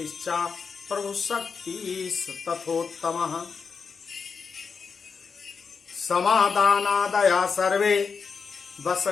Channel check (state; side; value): quieter; right; 5.5 dB